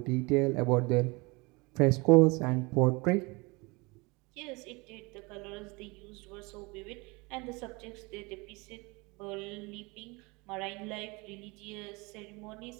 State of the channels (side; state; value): left; quieter; 26.3 dB